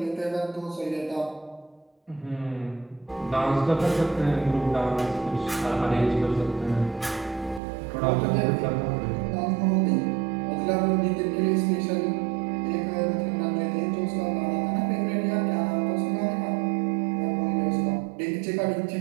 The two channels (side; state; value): left; drops out; at 7.6 s